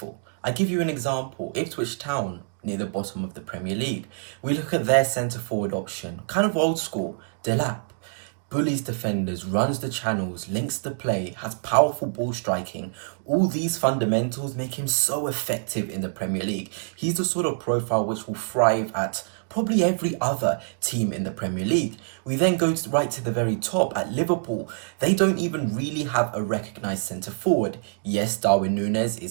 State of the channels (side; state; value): left; silent; digital silence